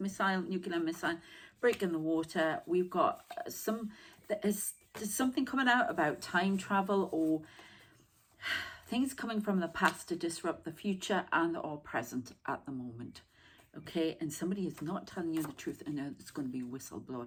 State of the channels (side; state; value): both; identical; correlation 1.00